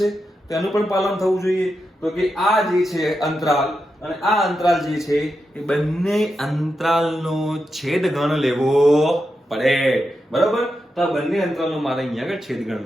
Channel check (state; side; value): normal; both; correlation 0.87